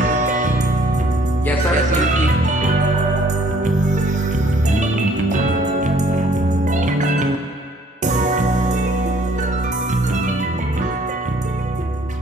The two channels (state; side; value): normal; both; correlation 0.60